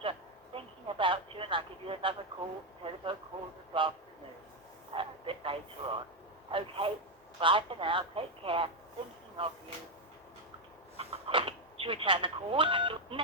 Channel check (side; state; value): both; normal; correlation 0.04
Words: thinking about you, and I'll give you another telephone call this afternoon, a bit later on. Okay, bye for now. Take care. Thinking of you. To return the call,